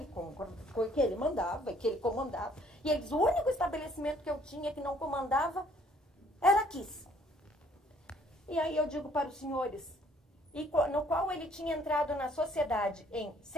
ele mandava e que ele comandava. E ele diz, o único estabelecimento que eu tinha que não comandava era Kiss. E aí eu digo para os senhores, no qual ele tinha entrado na sociedade em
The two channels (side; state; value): both; normal; correlation 0.61